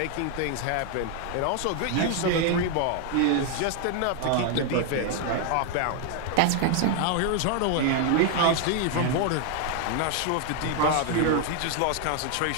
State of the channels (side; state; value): both; different; correlation 0.00